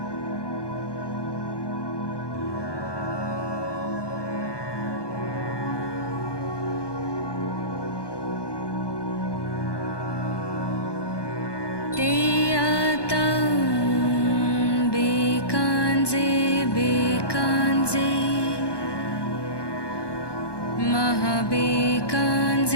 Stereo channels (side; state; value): right; late; 1.2 ms